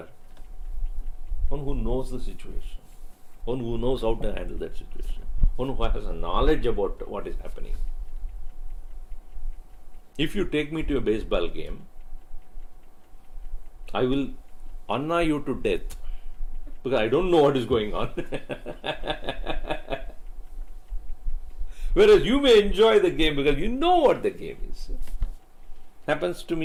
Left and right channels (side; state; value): both; identical; correlation 1.00